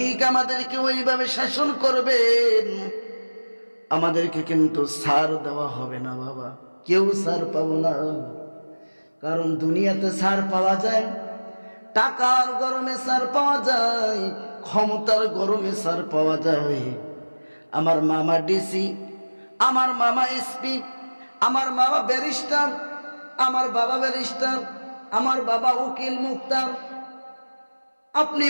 আমাদেরকে ওইভাবে শাসন করবেন। আমাদেরকে কিন্তু ছাড় দেওয়া হবে না বাবা, কেউ ছাড় পাবো না। কারণ দুনিয়াতে ছাড় পাওয়া যায়, টাকার গরমে ছাড় পাওয়া যায়, ক্ষমতার গরমে ছাড় পাওয়া যায়। আমার মামা ডিসি, আমার মামা এসপি, আমার মামা ব্যারিস্টার, আমার বাবা ব্যারিস্টার, আমার বাবা উকিল মুক্তার। আপনি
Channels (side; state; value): both; inverted; correlation -1.00